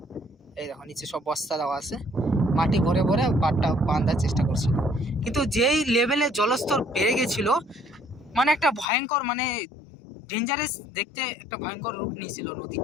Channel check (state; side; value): drops out; right; at 8.8 s